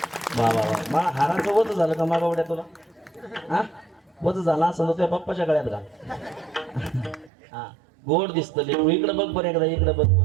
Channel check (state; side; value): drops out; left; at 7.3 s